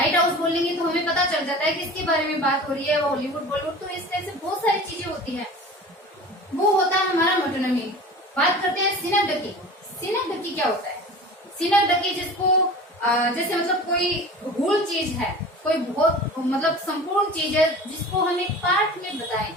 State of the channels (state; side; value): normal; both; correlation 0.38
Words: हाउस बोलेंगे तो हमें पता चल जाता है किसके बारे में बात हो रही है, हॉलीवुड बॉलीवुड, तो इस तरह से बहुत सारी चीजें होती है। वो होता है हमारा मेटोनिमी। बात करते हैं सिनोक्टिव। सिनोक्टिव क्या होता है? सिनोक्टिव जिसको जैसे मतलब कोई होल चीज है, कोई बहुत मतलब संपूर्ण चीज है जिसको हम एक पार्ट में बताएं,